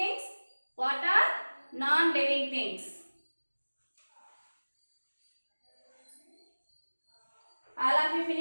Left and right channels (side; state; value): both; inverted; correlation -1.00